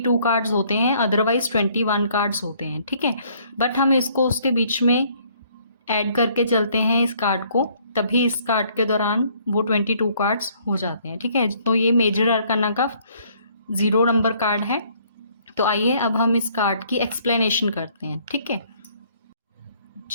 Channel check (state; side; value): inverted; both; correlation -0.63